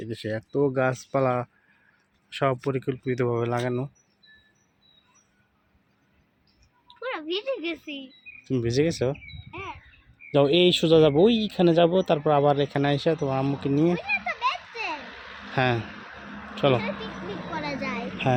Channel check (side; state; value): both; identical; correlation 1.00